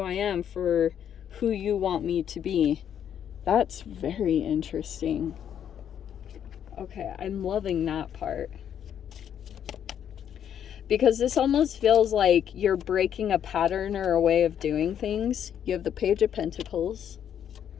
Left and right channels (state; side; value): quieter; right; 9.2 dB